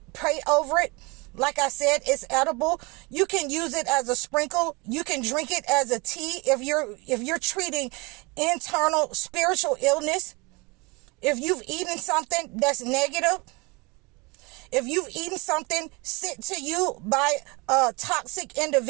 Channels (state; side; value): quieter; left; 27.0 dB